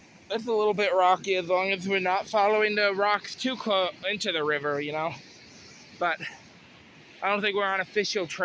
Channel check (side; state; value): both; identical; correlation 1.00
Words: it's a little bit rocky as long as we're not following the rocks too close into the river, you know. But I don't think we're on official